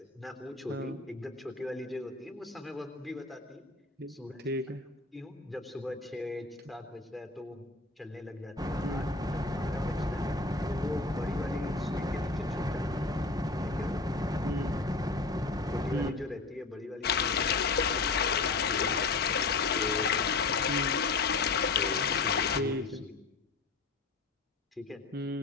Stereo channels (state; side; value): quieter; right; 3.8 dB